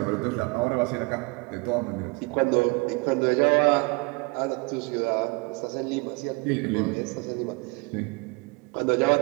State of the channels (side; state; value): left; quieter; 28.8 dB